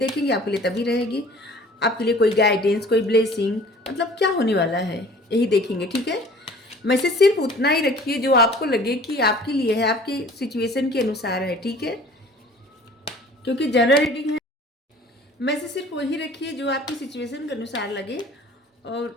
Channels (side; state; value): both; normal; correlation 0.48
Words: आपके लिए तभी रहेगी। आपके लिए कोई गाइडेंस, कोई ब्लेसिंग, मतलब क्या होने वाला है यही देखेंगे, ठीक है। मैसेज सिर्फ उतना ही रखिए जो आपको लगे कि आपके लिए है, आपकी सिचुएशन के अनुसार है, ठीक है, क्योंकि जनरल रीडिंग है। मैसेज सिर्फ वही रखिए जो आपकी सिचुएशन के अनुसार लगे,